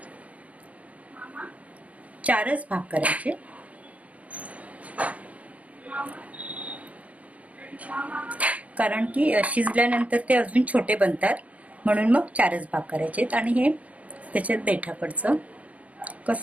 4च भाग करायचे. कारण की शिजल्यानंतर ते अजून छोटे बनतात, म्हणून मग 4च भाग करायचे. आणि हे त्याच्यात देठाकडचं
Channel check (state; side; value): late; left; 0.068 ms